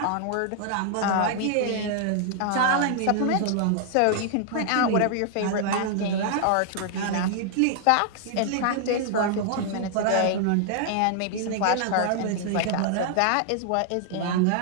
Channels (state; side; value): different; both; correlation 0.00